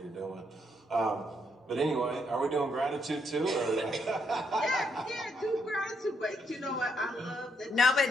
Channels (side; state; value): both; normal; correlation 0.75